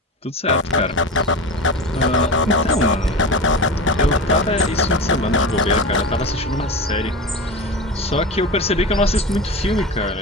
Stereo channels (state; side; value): normal; both; correlation 0.26